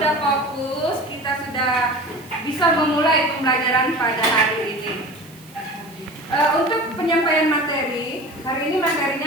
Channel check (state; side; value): noise; right; hiss, 24 dB below the sound